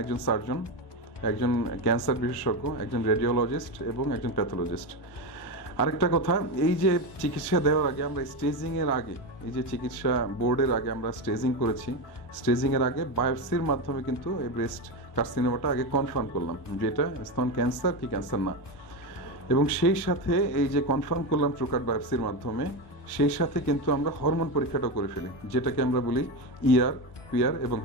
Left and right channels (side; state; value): right; late; 1.2 ms